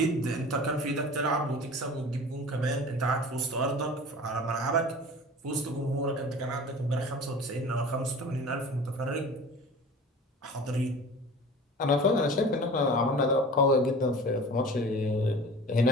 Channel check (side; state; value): both; normal; correlation 0.39